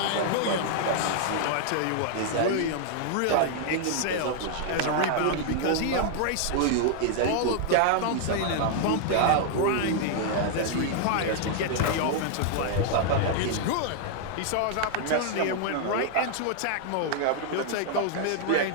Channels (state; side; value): different; both; correlation 0.00